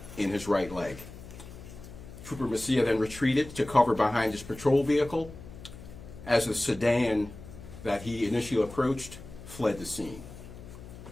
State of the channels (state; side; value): noise; left; hum, 15 dB below the sound